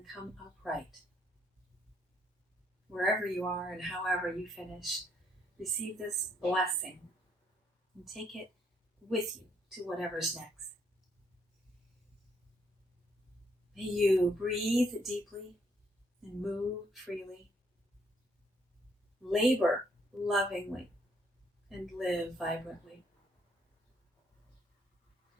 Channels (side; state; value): both; normal; correlation 0.70